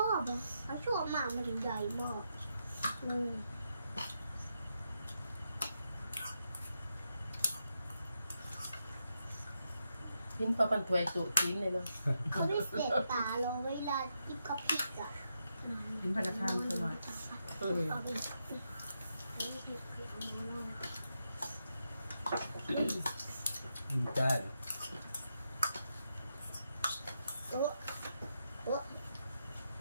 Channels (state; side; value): inverted; both; correlation -0.84